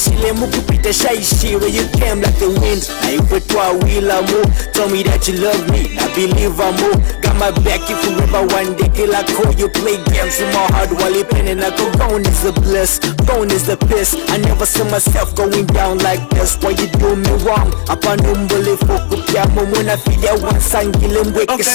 mukupita shy where you came like the wind. I put to a wheel I move. Told me that you love me, I believe I move. Got my back if you ever one day till I call you play games in my heart while you penning. I go gone is the bliss, gone is the piss. I never saw myself going down like this. Why you do me wrong? Upon umbole fokupiamo muna filia wansangile mweke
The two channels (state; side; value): silent; right; 69 dB below the other